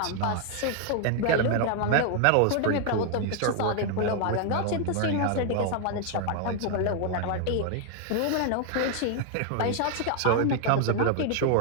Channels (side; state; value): both; different; correlation 0.00